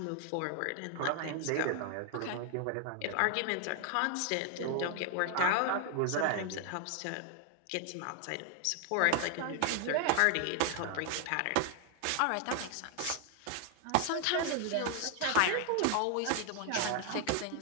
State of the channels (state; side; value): different; both; correlation 0.00